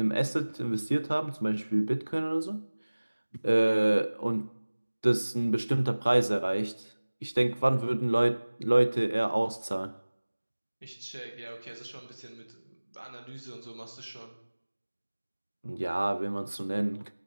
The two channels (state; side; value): inverted; both; correlation -1.00